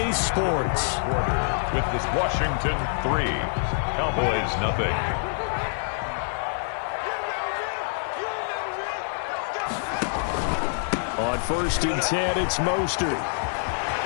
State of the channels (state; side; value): silent; right; 61 dB below the other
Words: Sports. Quarter with this Washington 3, Cowboys nothing. On first and 10, it's Mostert.